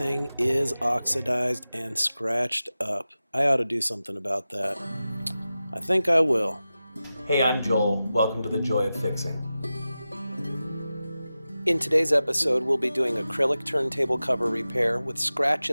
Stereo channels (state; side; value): inverted; both; correlation -0.94